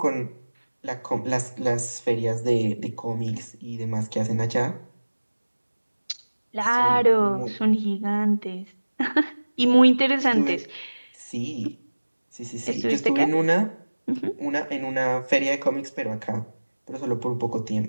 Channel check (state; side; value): inverted; both; correlation -1.00